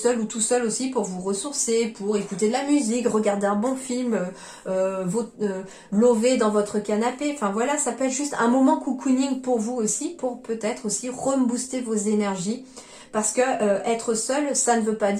ou tout seul aussi pour vous ressourcer, pour écouter de la musique, regarder un bon film, lover dans votre canapé. Enfin voilà, ça peut être juste un moment cocooning pour vous aussi, pour peut-être aussi rebooster vos énergies. Parce que être seul, ça ne veut pas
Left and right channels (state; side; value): identical; both; correlation 1.00